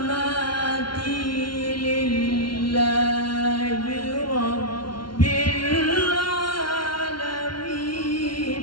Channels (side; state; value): right; late; 0.72 ms